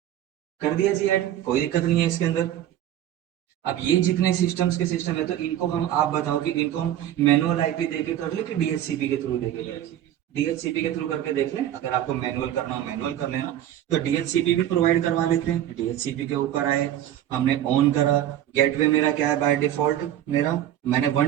कर दिया जी ऐड, कोई दिक्कत नहीं है इसके अंदर। अब ये जितने सिस्टम्स के सिस्टम है, तो इनको हम, आप बताओ कि इनको हम मैनुअल आईपी देके कर ले कि डीएचसीपी के थ्रू देके कर। डीएचसीपी के थ्रू करके देख लें, अगर आपको मैनुअल करना हो मैनुअल कर लेना। तो डीएचसीपी भी प्रोवाइड करवा लेते हैं। डीएचसीपी के ऊपर आए, हमने ऑन करा। गेटवे मेरा क्या है बाय डिफॉल्ट, मेरा मैंने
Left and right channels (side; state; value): left; quieter; 11.8 dB